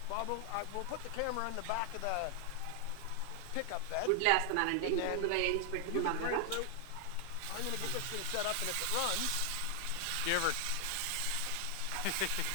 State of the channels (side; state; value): both; different; correlation 0.00